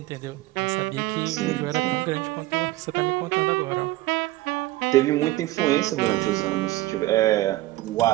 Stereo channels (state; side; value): quieter; left; 17.7 dB